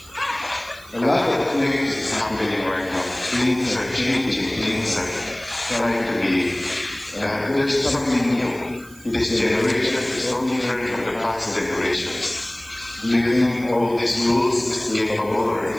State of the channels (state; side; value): noise; right; hiss, 22 dB below the sound